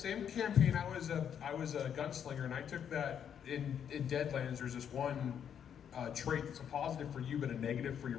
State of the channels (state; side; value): quieter; right; 8.5 dB